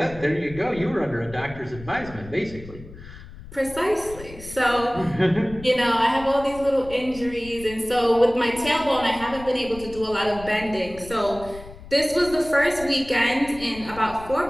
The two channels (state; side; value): noise; left; rumble, 16 dB below the sound